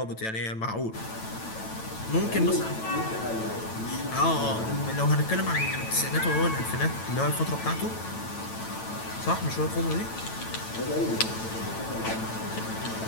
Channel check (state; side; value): late; right; 9.0 ms